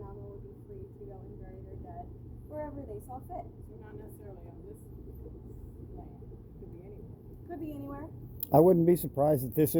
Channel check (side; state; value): both; identical; correlation 1.00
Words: would be free to go and bury their dead wherever they saw fit. So not necessarily on this land. Could be anywhere. Could be anywhere. I wouldn't be surprised if this